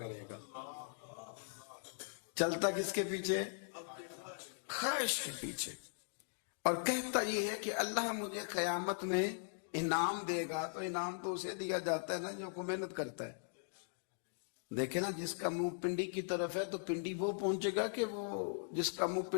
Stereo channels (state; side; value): silent; right; digital silence